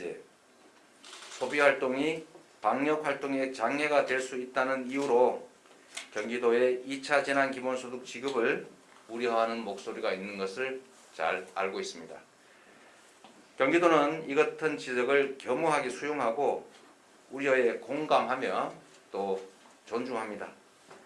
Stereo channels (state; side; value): identical; both; correlation 1.00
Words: 소비활동이 방역활동에 장애가 될 수 있다는 이유로 경기도의 2차 재난기본소득 지급을 우려하는 목소리가 있는 것을 잘 알고 있습니다. 경기도는 이 같은 지적을 겸허하게 수용하고 우려에 공감하며 또 존중합니다.